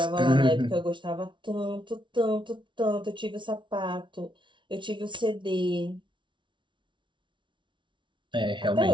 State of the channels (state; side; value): late; left; 0.24 ms